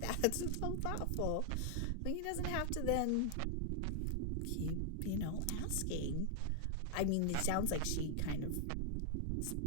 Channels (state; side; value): different; both; correlation 0.00